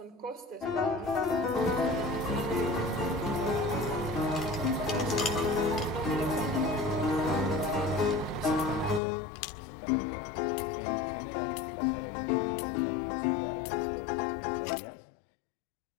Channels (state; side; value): drops out; right; at 9.0 s